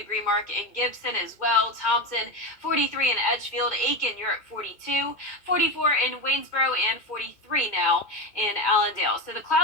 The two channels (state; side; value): late; right; 2.2 ms